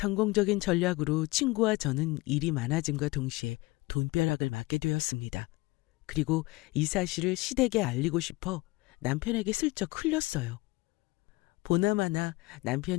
전략으로 친구와 저는 일이 많아짐과 동시에 돈벼락을 맞게 되었습니다. 그리고 이 사실을 시댁에 알리고 싶어 남편에게 슬쩍 흘렸어요. 보나마나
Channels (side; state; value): right; quieter; 22.3 dB